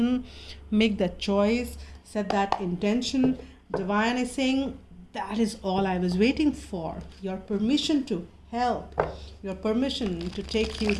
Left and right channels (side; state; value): both; identical; correlation 1.00